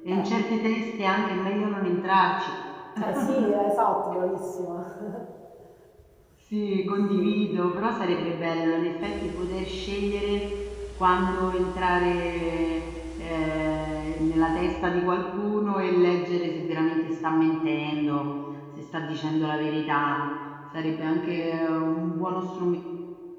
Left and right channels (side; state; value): both; identical; correlation 1.00